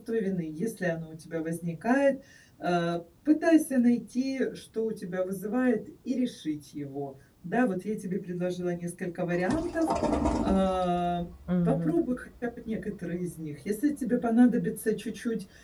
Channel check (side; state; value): both; identical; correlation 1.00